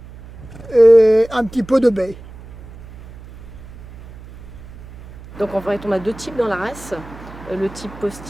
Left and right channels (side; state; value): right; noise; hum, 17 dB below the sound